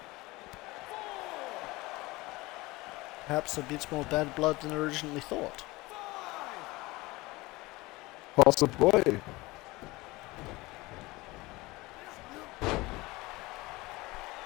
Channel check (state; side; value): quieter; right; 21.5 dB